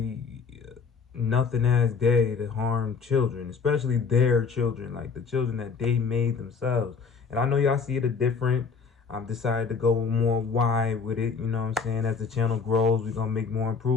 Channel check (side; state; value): right; quieter; 5.5 dB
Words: nothing ass day, to harm children, especially their children, like the children that they made themselves. And I know y'all see it a different. I've decided to go more wide with it. You know what I'm saying? As the channel grows, we're gonna make more